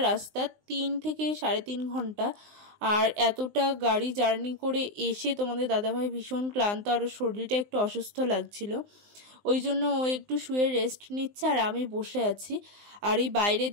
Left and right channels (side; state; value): left; late; 19 ms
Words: রাস্তা, 3 থেকে 3.5 ঘন্টা। আর এতটা গাড়ি জার্নি করে এসে তোমাদের দাদাভাই ভীষণ ক্লান্ত, আর শরীরটা একটু অসুস্থ লাগছিল, ওই জন্য ও একটু শুয়ে রেস্ট নিচ্ছে আর আমি বসে আছি। আর এই বাইরের